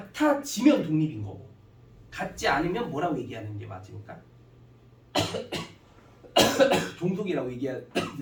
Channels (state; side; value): identical; both; correlation 1.00